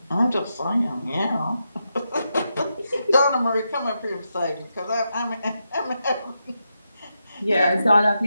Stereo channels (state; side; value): inverted; both; correlation -0.85